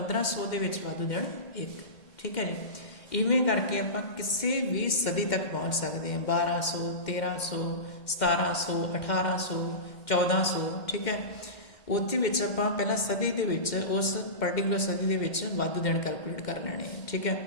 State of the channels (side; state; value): right; late; 2.1 ms